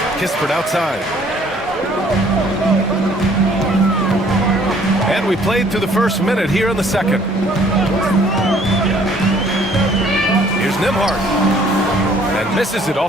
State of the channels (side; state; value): both; normal; correlation 0.59